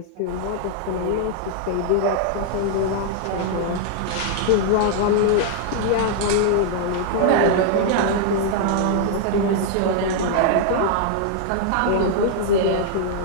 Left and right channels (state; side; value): different; both; correlation -0.01